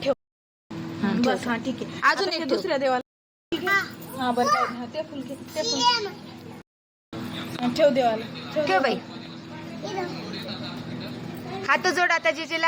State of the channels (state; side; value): identical; both; correlation 1.00